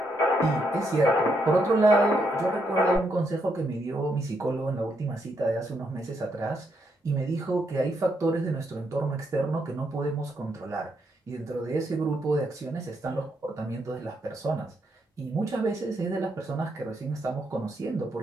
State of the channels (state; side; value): normal; both; correlation 0.78